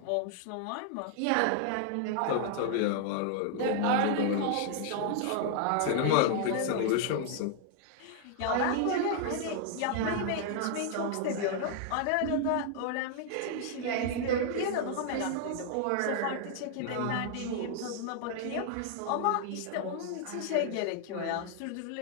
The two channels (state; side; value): different; both; correlation 0.00